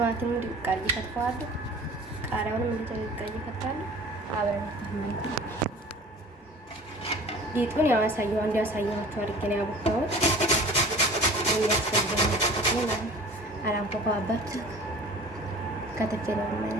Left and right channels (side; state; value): both; normal; correlation 0.43